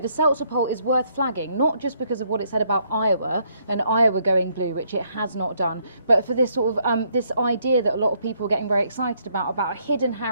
Seltzer poll is worth flagging, not just because of what it said about Iowa, and Iowa going blue, which it has not done, but for this sort of, this idea that a lot of people are getting very excited about a hidden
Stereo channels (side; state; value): both; inverted; correlation -0.71